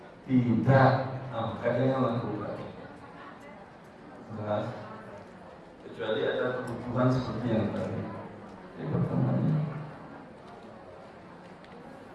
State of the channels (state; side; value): identical; both; correlation 1.00